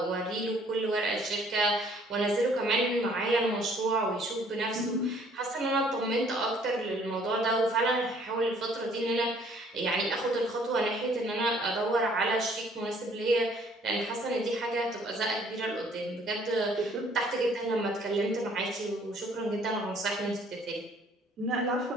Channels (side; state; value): both; normal; correlation 0.60